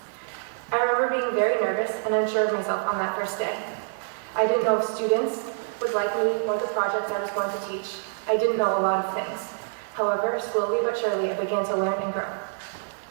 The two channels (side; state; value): left; silent; digital silence